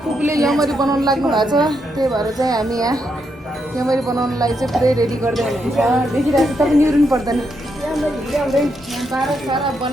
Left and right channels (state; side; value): normal; both; correlation 0.80